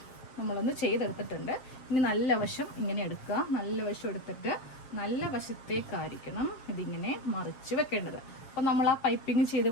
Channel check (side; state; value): right; late; 7.4 ms